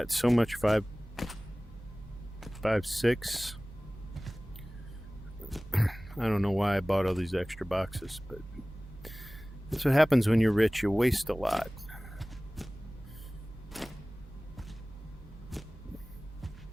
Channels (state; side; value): normal; both; correlation 0.98